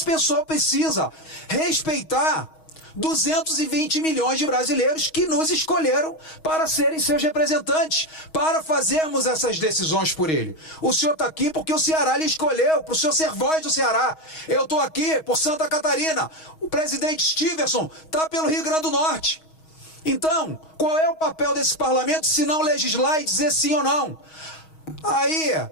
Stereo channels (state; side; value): late; right; 6.3 ms